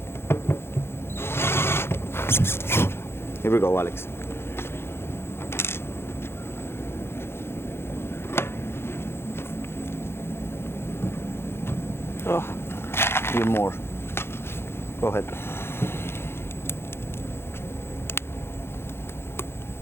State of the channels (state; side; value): late; right; 0.12 ms